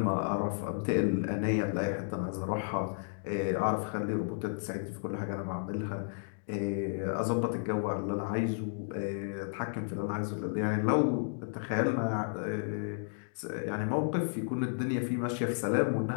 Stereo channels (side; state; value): right; silent; digital silence